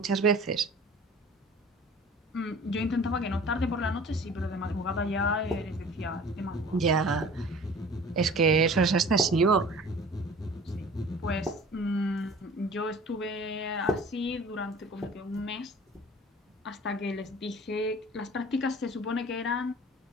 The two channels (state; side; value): normal; both; correlation 0.44